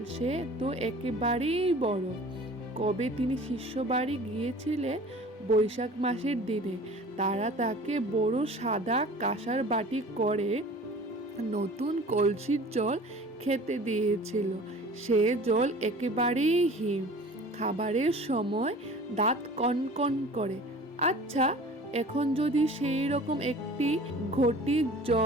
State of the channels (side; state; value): both; normal; correlation 0.44